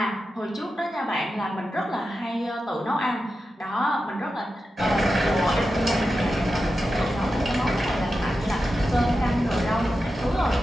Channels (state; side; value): normal; both; correlation 0.91